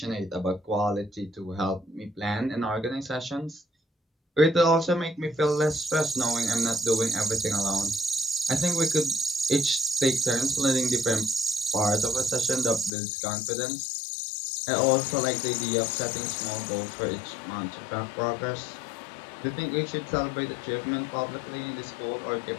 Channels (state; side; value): drops out; right; at 12.9 s